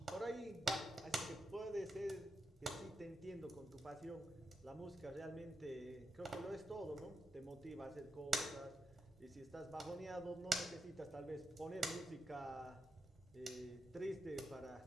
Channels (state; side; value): normal; both; correlation 0.86